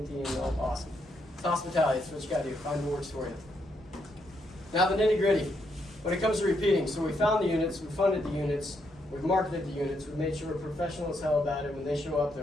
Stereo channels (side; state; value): both; normal; correlation 0.77